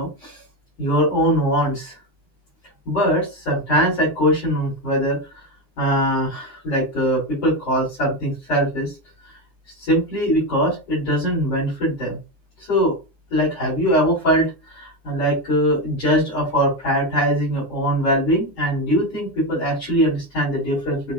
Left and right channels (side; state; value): right; late; 9.8 ms